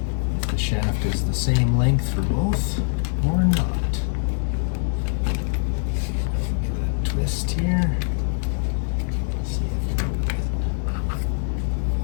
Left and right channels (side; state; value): right; silent; 63 dB below the other